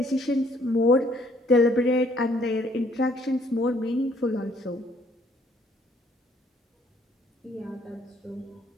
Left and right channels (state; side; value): normal; both; correlation 0.64